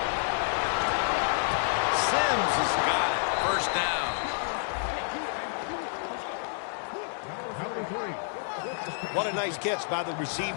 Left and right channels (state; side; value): silent; right; digital silence